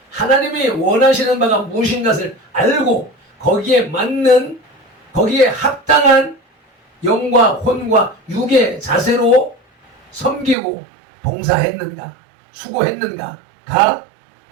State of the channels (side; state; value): left; drops out; at 10.6 s